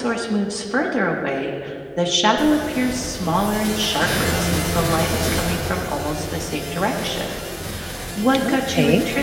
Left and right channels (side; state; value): both; identical; correlation 1.00